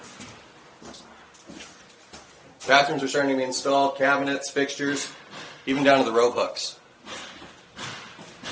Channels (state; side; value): identical; both; correlation 1.00